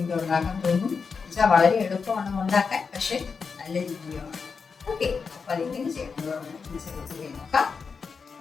ഉണ്ടാക്കാൻ തോന്നും. വെച്ചാൽ വളരെ എളുപ്പമാണ് ഉണ്ടാക്കാൻ, പക്ഷെ നല്ല രുചിയാണ്. ഓക്കെ, അപ്പൊ അതെങ്ങനെ ചെയ്യണമെന്ന് നോക്കാം.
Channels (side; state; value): right; quieter; 5.4 dB